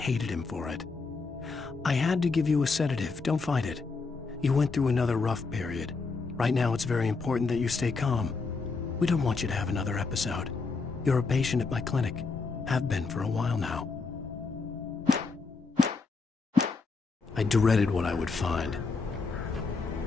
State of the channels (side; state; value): right; quieter; 4.3 dB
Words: him for it. I had to give you a sedative. Don't fight it. You went through another rough period. Right now, it's very important that you stay calm. We don't want you to have another episode. You're a patient at my clinic. Have been for a while now. I dreaded what I would find.